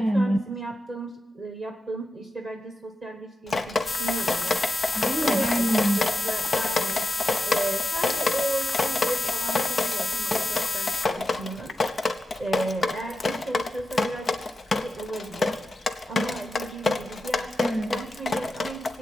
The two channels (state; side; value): normal; both; correlation 0.89